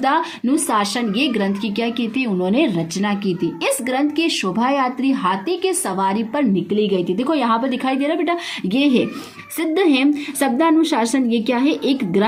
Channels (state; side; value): identical; both; correlation 1.00